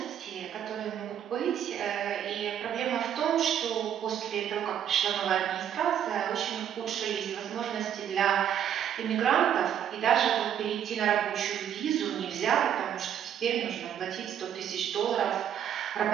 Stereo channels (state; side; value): quieter; left; 9.5 dB